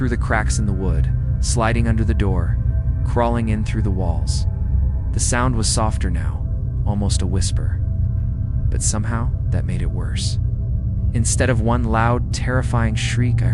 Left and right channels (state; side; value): identical; both; correlation 1.00